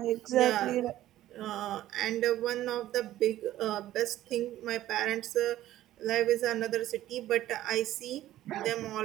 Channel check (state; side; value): quieter; left; 14.0 dB